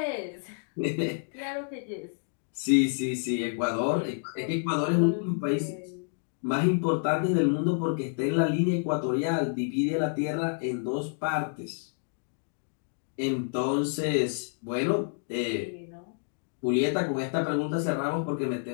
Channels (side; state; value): right; silent; digital silence